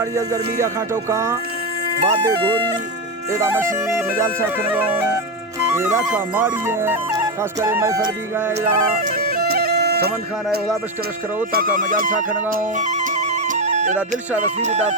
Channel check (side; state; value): both; normal; correlation 0.11